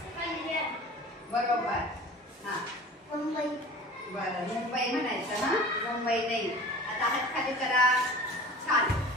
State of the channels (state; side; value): normal; both; correlation 0.40